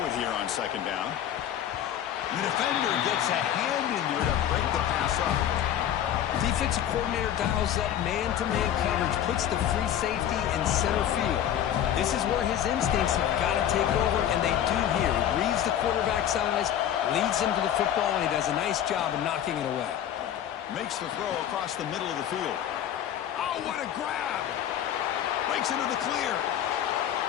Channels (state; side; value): quieter; right; 10.5 dB